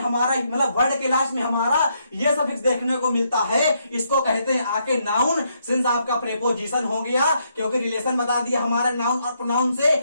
मतलब वर्ड के लास्ट में हमारा ये सफिक्स देखने को मिलता है, इसको कहते हैं आके नाउन। सिंस आपका प्रेपोजिशन हो गया, क्योंकि रिलेशन बता दिया हमारा नाउन और प्रोनाउन से,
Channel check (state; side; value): inverted; both; correlation -0.76